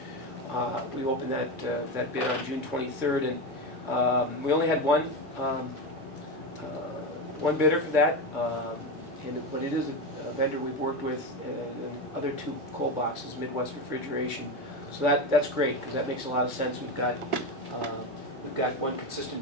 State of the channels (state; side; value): normal; both; correlation 0.16